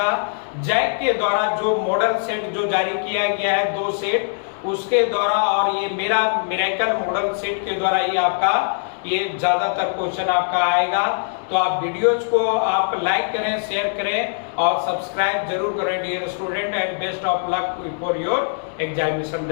जैक के द्वारा, जो मॉडल सेट जो जारी किया गया है 2 सेट उसके द्वारा, और ये मेरा मिरेकल मॉडल सेट के द्वारा ये आपका ये ज्यादातर क्वेश्चन आपका आएगा। तो आप वीडियोज को आप लाइक करें, शेयर करें और सब्सक्राइब जरूर करें dear student, and best of luck for your examination.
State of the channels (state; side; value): silent; right; digital silence